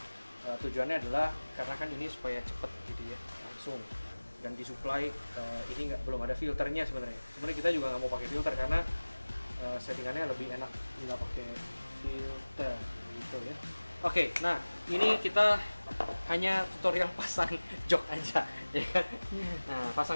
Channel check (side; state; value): both; inverted; correlation -1.00